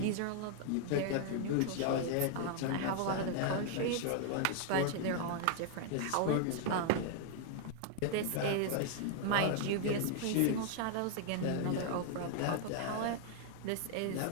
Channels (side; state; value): both; different; correlation 0.00